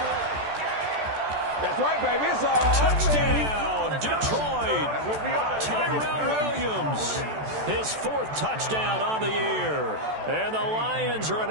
That's right, baby. It's all Touchdown, Detroit. Tyrell Williams. His 4th touchdown on the year. And the Lions are an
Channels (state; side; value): late; left; 14 ms